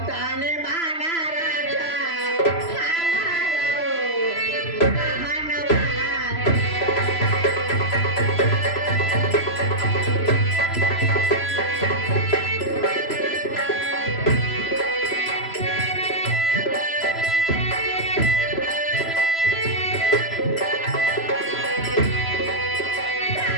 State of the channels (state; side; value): late; right; 3.0 ms